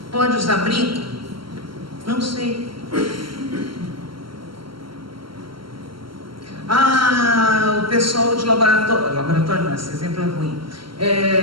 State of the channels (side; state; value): left; late; 0.73 ms